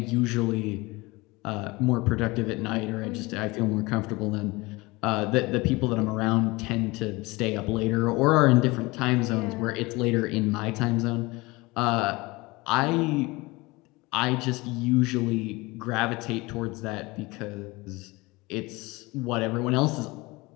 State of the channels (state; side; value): quieter; right; 23.1 dB